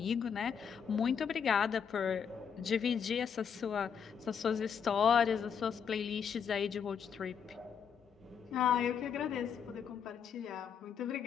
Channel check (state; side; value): quieter; right; 7.2 dB